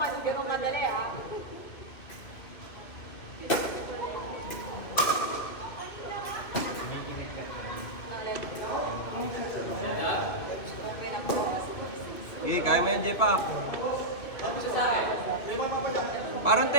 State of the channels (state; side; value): late; right; 2.7 ms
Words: kasi ganun kadali ah. Eh, kaya mo yan, J-Pack. Parang